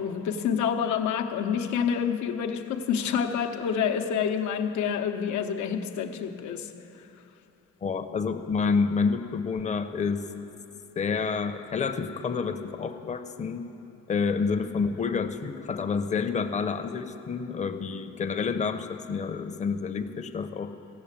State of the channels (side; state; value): right; quieter; 5.8 dB